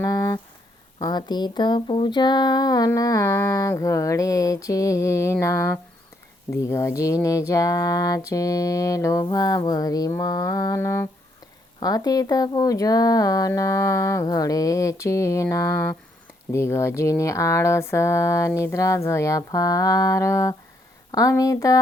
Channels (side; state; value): both; normal; correlation 0.73